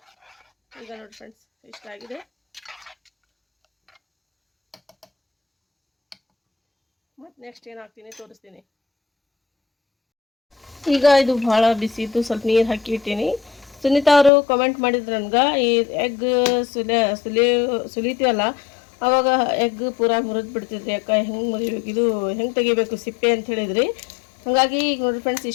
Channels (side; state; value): right; drops out; at 14.3 s